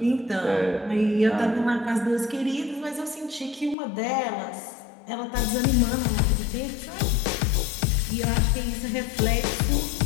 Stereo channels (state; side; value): drops out; right; at 3.8 s